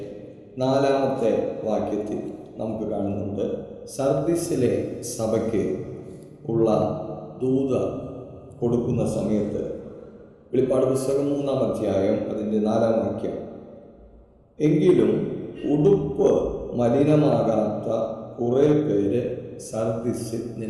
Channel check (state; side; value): identical; both; correlation 1.00